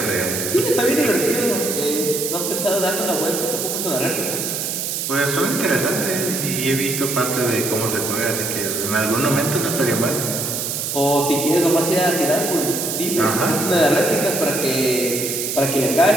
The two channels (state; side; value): noise; right; hiss, 3 dB below the sound